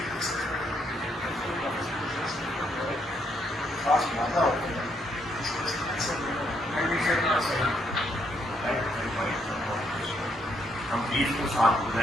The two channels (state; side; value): normal; both; correlation 0.74